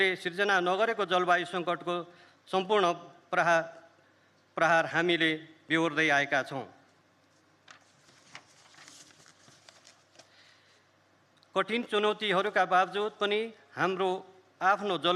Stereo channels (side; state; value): both; identical; correlation 1.00